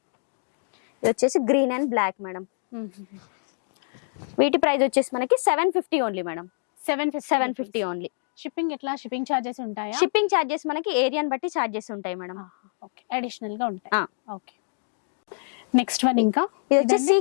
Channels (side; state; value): right; silent; digital silence